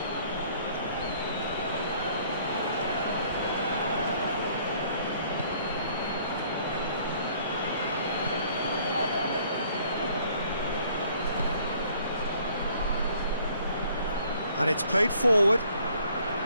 And it's played forward.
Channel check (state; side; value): inverted; both; correlation -0.60